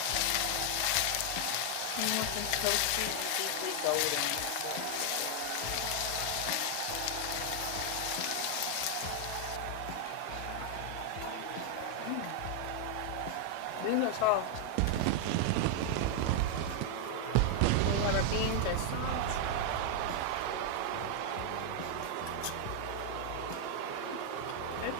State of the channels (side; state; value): both; different; correlation 0.00